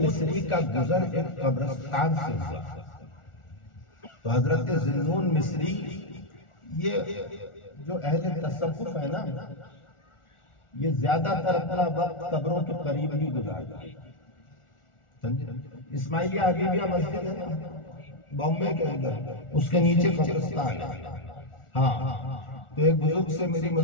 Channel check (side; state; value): right; late; 1.4 ms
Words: مصری کا گزر ایک قبرستان سے ہوا، تو حضرت ذنون مصری، یہ جو اہل تصوف ہے نا، یہ زیادہ تر اپنا وقت قبروں کے قریب ہی گزارتے ہیں، سمجھے؟ اسماعیلیہ حبیبیہ مسجد ہے نا بامبے کے اندر، اس کے نیچے قبرستان ہے۔ ہاں، تو ایک بزرگ سے میری